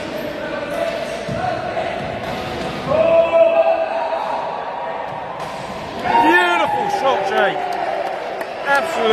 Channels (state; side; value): identical; both; correlation 1.00